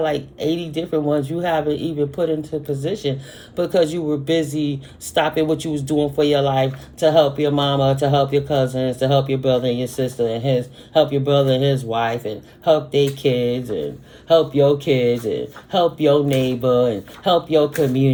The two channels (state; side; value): identical; both; correlation 1.00